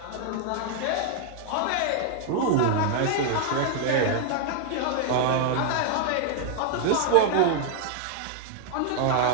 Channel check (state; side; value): different; both; correlation 0.00